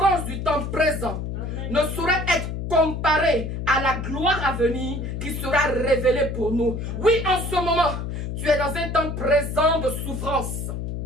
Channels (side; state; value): left; noise; hum, 5 dB below the sound